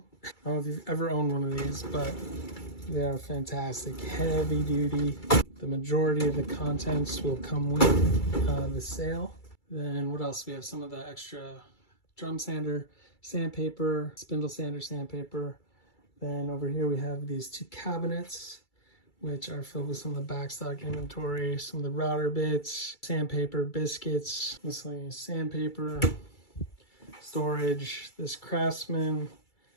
I don't know if you've ever owned one of these, but they are fantastic, heavy duty. The majority of the contents will come with the sale. Then what else? We have some of the extra drum sander, sandpaper, spindle sander, sandpaper. Then over here we have these 2 cabinets, which are filled with some of the backstock inventory, some of the router bits, sandpaper, biscuits, miscellaneous sandpaper, storage, this Craftsman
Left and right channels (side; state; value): right; late; 2.3 ms